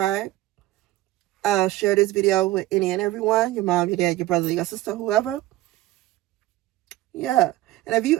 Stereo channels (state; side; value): quieter; left; 16.4 dB